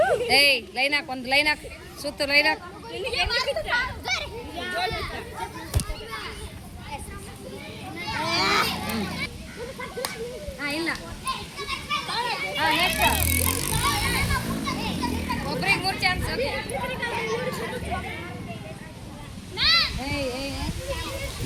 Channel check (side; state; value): both; identical; correlation 1.00